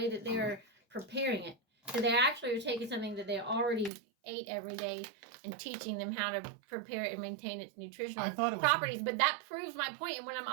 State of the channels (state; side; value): drops out; left; at 3.9 s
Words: that they were preparing it. So they actually are taking something that they already ate every day and teaching them how to prepare it and maintain its nutritional properties. But that proves my point. And when I'm